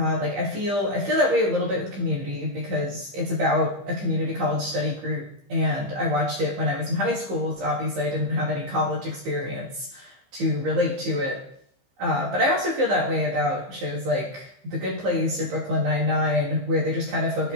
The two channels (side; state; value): left; late; 15 ms